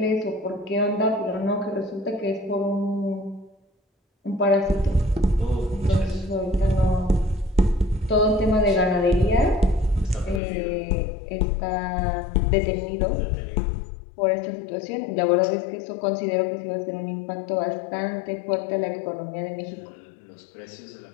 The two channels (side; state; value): right; drops out; at 10.4 s